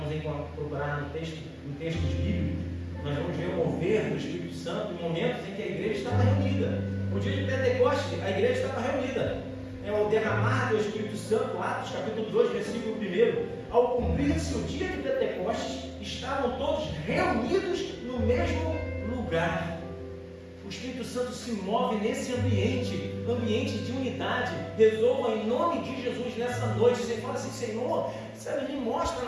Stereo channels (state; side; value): identical; both; correlation 1.00